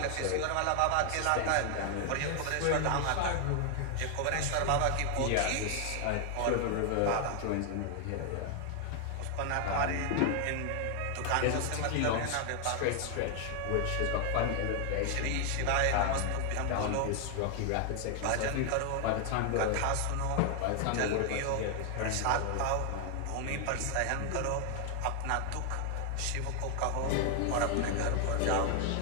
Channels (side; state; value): both; different; correlation 0.00